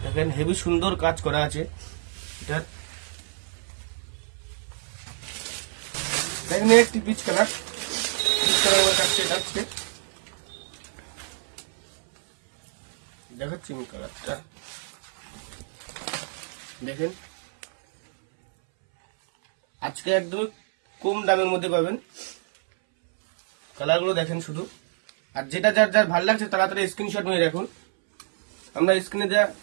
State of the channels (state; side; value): silent; left; 61 dB below the other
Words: দেখেন হেভি সুন্দর কাজ করা আছে এটা। দেখেন একটি পিচ কালার, দেখাচ্ছি কালারটা। দেখেন আজকে একদম কম দামের মধ্যে পাবেন কালারগুলো। দেখেন শুধু, আর যেটা যার যার ভালো লাগছে তাড়াতাড়ি স্ক্রিনশট নিয়ে রাখুন। আমরা স্ক্রিনে যা